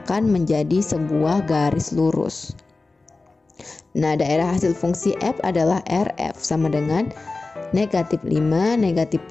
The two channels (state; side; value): quieter; right; 3.5 dB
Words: menjadi sebuah garis lurus. Nah, daerah hasil fungsi f adalah Rf sama dengan negatif 5, negatif